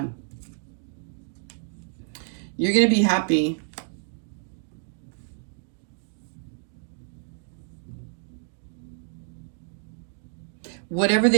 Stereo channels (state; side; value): silent; left; digital silence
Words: You're going to be happy. Whatever